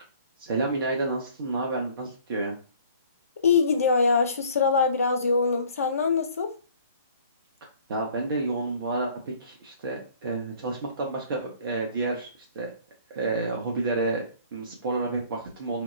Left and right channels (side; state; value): both; inverted; correlation -0.54